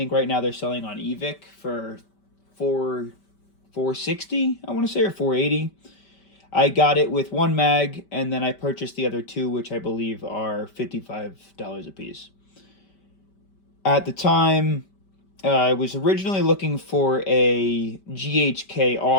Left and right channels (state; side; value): late; right; 5.2 ms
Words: right now they're selling on eVic for $460, I want to say, or $480. I got it with one mag, and then I purchased the other two, which I believe are $55 a piece. At the time, I was originally looking for a GHK